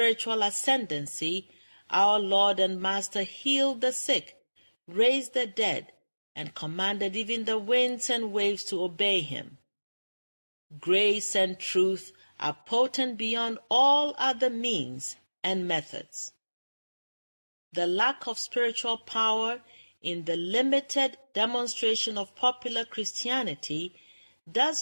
ascendancy, our Lord and Master healed the sick, raised the dead, and commanded even the winds and waves to obey him. Grace and truth are potent beyond all other means and methods. The lack of spiritual power in the limited demonstration of popular Christianity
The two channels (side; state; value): both; inverted; correlation -1.00